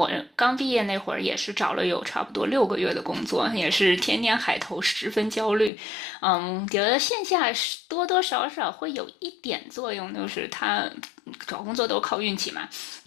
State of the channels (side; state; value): right; drops out; at 5.7 s